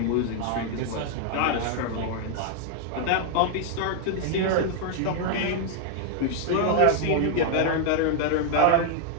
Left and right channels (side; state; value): both; different; correlation 0.00